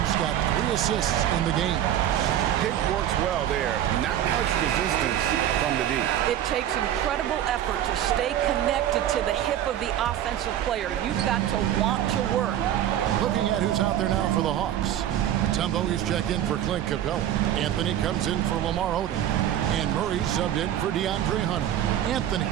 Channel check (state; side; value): quieter; left; 11.3 dB